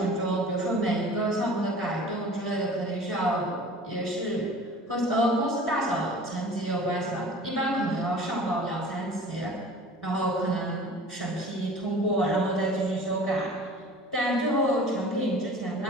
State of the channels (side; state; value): both; normal; correlation 0.43